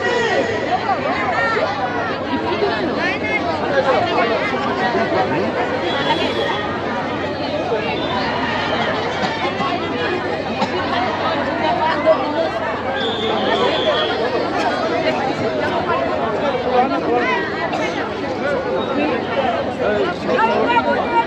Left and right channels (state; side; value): identical; both; correlation 1.00